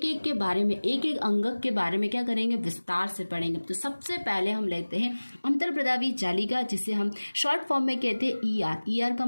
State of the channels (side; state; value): both; inverted; correlation -1.00